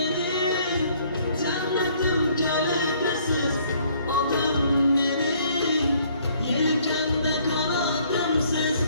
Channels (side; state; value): both; inverted; correlation -0.62